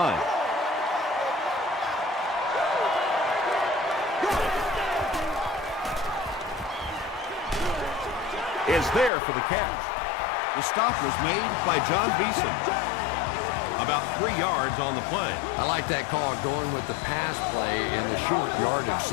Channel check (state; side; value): drops out; right; at 9.1 s